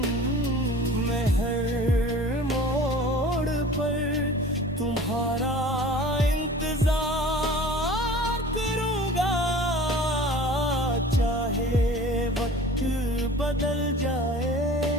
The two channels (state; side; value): normal; both; correlation 0.42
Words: मैं हर मोड़ पर तुम्हारा बदल जाए,